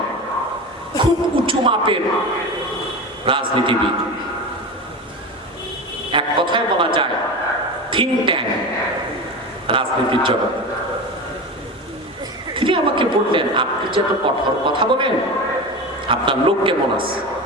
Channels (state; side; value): normal; both; correlation 0.26